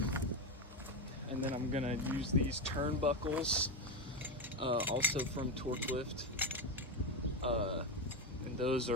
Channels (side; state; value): both; normal; correlation 0.13